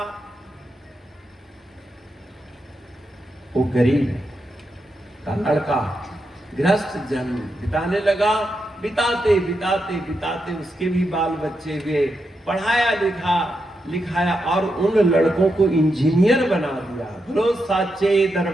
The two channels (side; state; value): both; normal; correlation 0.85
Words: वो गरीब का लड़का गृहस्थ जन्म बिताने लगा। बिताते बिताते बिताते उसके भी बाल बच्चे हुए, पढ़ाया लिखाया, और उन लड़कों को इंजीनियर बना दिया। बोलो साचे